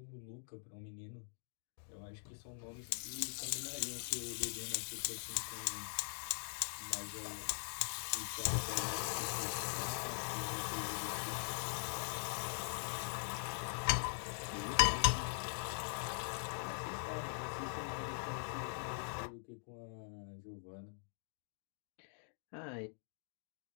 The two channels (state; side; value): silent; right; digital silence